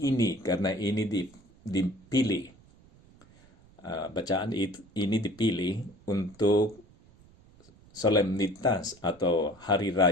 karena ini dipilih, bacaan ini dipilih untuk solemnitas atau hari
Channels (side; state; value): right; noise; rumble, 27 dB below the sound